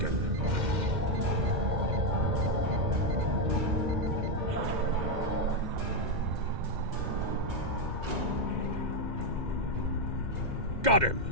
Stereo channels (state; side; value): late; left; 2.1 ms